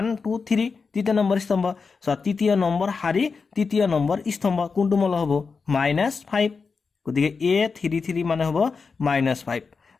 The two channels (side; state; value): right; quieter; 4.9 dB